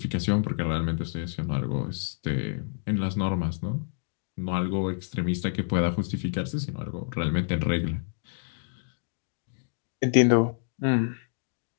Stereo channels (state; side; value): silent; right; digital silence